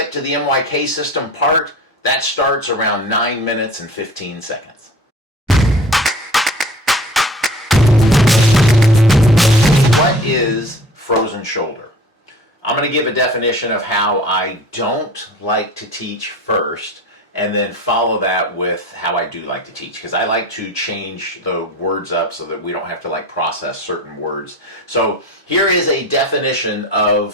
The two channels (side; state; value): both; normal; correlation 0.42